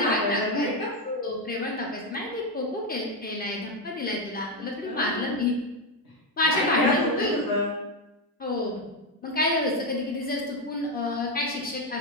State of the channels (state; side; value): normal; both; correlation 0.07